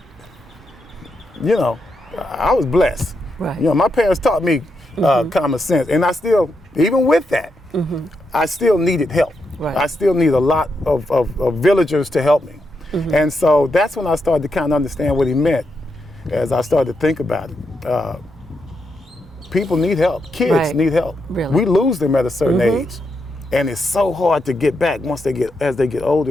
you know, I was blessed. Right. You know, my parents taught me common sense, and I still, even with that, I still needed help. Right. I still need a lot of villagers to help me. And so that's when I started to kind of understand what he meant as I started to think about it. People need help. Kids Right. need help. Really. We lose them at a certain age, and it's so hard to get back as they get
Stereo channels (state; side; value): normal; both; correlation 0.83